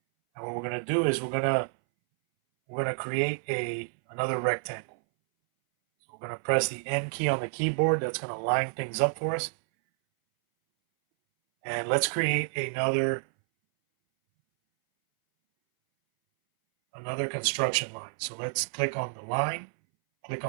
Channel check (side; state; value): left; silent; 59 dB below the other